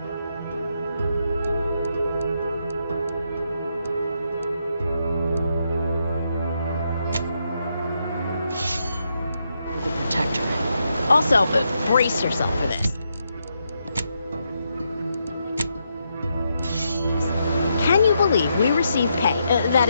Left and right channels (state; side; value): inverted; both; correlation -0.80